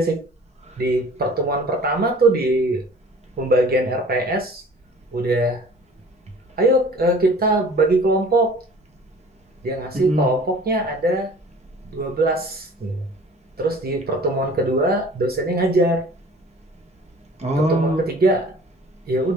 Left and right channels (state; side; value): normal; both; correlation 0.47